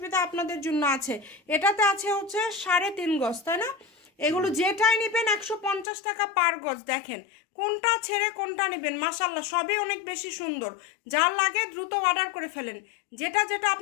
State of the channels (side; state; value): right; drops out; at 5.9 s